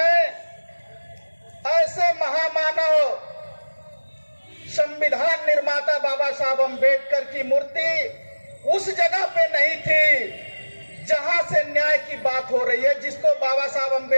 ऐसे महामानव संविधान निर्माता बाबा साहब अम्बेडकर की मूर्ति उस जगह पे नहीं थी जहां से न्याय की बात हो रही है। जिसको बाबा साहब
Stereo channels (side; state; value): both; inverted; correlation -1.00